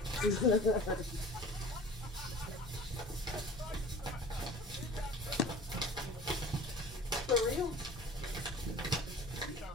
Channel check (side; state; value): both; normal; correlation 0.43